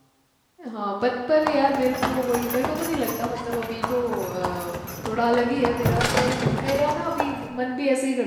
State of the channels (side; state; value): both; identical; correlation 1.00